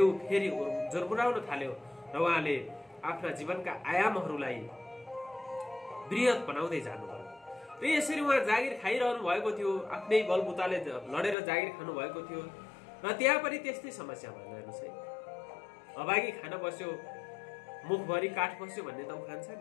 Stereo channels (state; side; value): drops out; right; at 11.4 s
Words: फेरि जोरबुराउन थाल्यो र उहाँले आफ्ना जीवनका आयामहरूलाई बृहत बनाउँदै जानुभयो। र यसरी उहाँ जागिर खाइरहनु भएको थियो, आफ्नै बलबुताले लडेर जागिर खानु भएको थियो र त्यहाँ पनि त्यस्तै समस्या भएन। हेर्नुहोस् है, अभागी खान बस्यो मुखभरि काठ बस्यो भन्ने त उखान छ